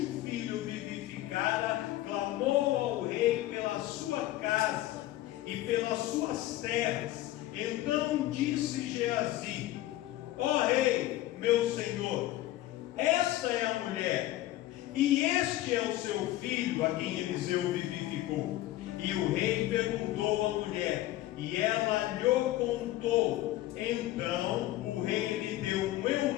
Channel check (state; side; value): quieter; right; 15.5 dB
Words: filho vivificara clamou ao rei pela sua casa e pelas suas terras. Então disse Geazi: ó rei, meu senhor, esta é a mulher, e este é o seu filho a quem Eliseu vivificou. E o rei perguntou à mulher, e ela lhe contou. Então o rei lhe deu um